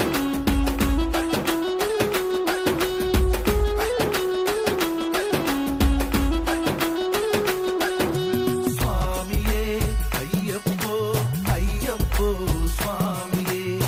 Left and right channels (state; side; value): identical; both; correlation 1.00